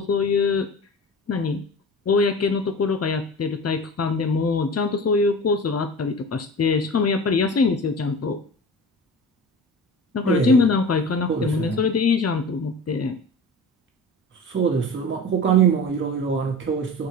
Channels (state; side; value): normal; both; correlation 0.35